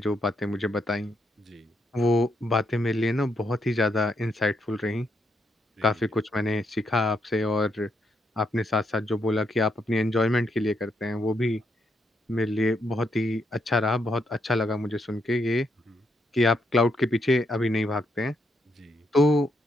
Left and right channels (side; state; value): both; normal; correlation 0.77